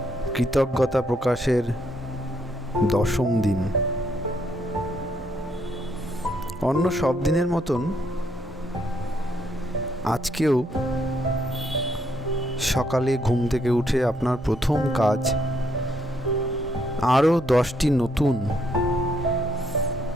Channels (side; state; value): both; normal; correlation 0.73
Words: কৃতজ্ঞতা প্রকাশের 10ম দিন। অন্য সব দিনের মতন আজকেও সকালে ঘুম থেকে উঠে আপনার প্রথম কাজ আরও 10টি নতুন